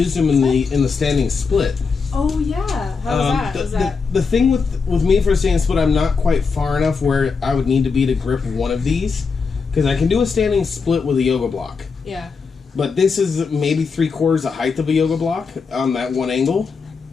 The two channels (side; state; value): right; quieter; 5.1 dB